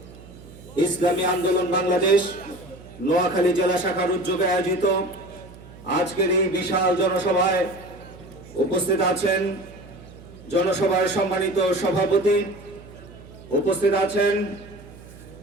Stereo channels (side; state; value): right; noise; hum, 19 dB below the sound